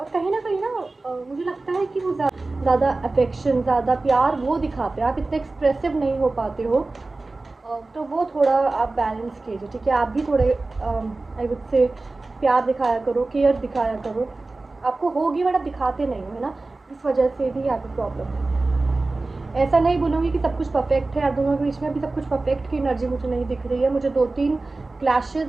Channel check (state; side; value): quieter; left; 3.3 dB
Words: कहीं ना कहीं ना मुझे लगता है कि वो ज़्यादा अफेक्शन, ज़्यादा प्यार वो दिखाते हैं, आप इतने एक्सप्रेसिव नहीं हो पाते हो। तो वो थोड़ा आप बैलेंस कीजिए, ठीक है, आप भी थोड़े आई वुड से प्यार दिखाया करो, केयर दिखाया करो। आपको होगी बट आप दिखाते नहीं हो, है ना, इस वजह से भी यहाँ पे प्रॉब्लम है। ऐसा नहीं बोलूँगी कि सब कुछ परफेक्ट है, आप दोनों के बीच में अभी सब कुछ परफेक्ट की एनर्जी मुझे नहीं दिख रही है। मुझे 2-3 क्लैशेस